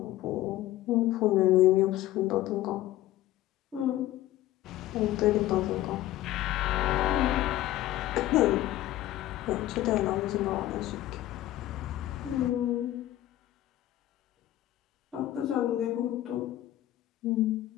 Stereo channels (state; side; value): quieter; right; 14.8 dB